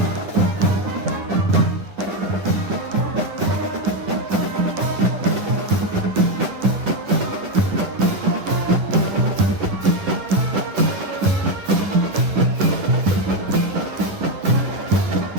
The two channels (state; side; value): late; left; 10 ms